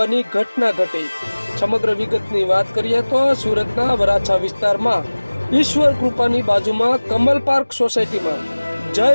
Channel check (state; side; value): inverted; both; correlation -1.00